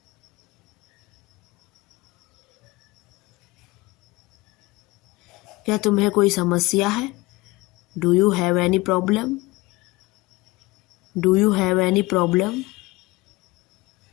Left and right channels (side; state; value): right; quieter; 21.5 dB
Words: क्या तुम्हें कोई समस्या है? Do you have any problem? Do you have any problem?